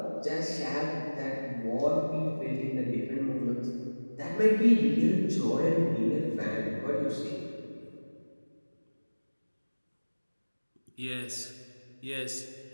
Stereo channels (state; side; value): inverted; both; correlation -1.00